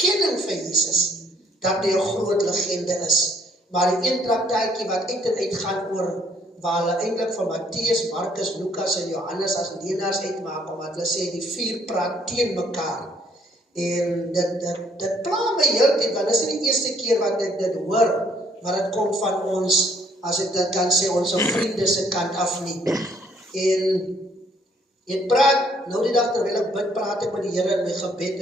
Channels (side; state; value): both; normal; correlation 0.64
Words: vir Jesus dat hy 'n groot legende is. Maar die een traktaatjie wat uit en uit gaan oor waar hulle eintlik van Matteus, Markus, Lukas en Johannes as leenaars uitmaak, omdat hulle sê die 4 praat teen mekaar. En dit pla my heeltyd, want dit is nie die eerste keer wat ek dit hoor, maar dit kom van ons, as ek dit kan sê, ons vriende se kant af nie. En ek praat, nou die dag terwyl ek bid, praat ek met die Here in my gebed,